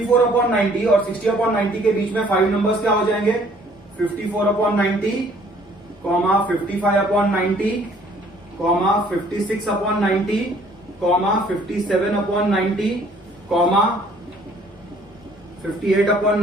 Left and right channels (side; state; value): both; normal; correlation 0.59